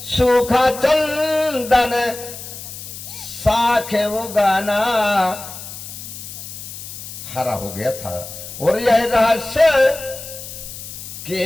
सूखा चंदन साखे वो गाना हरा हो गया था। और यह रहस्य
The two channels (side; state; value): left; noise; hiss, 11 dB below the sound